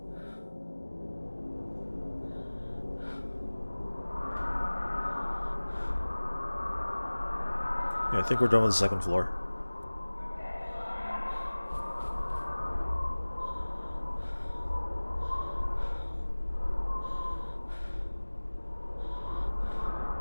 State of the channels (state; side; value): inverted; both; correlation -1.00